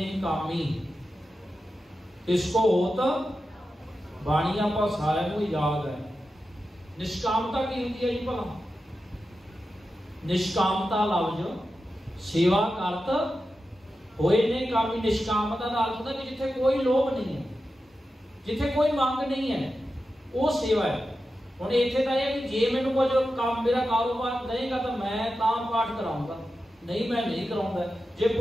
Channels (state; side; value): normal; both; correlation 0.91